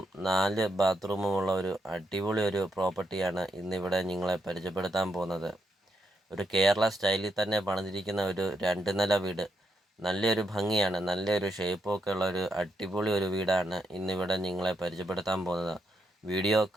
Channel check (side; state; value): both; normal; correlation 0.81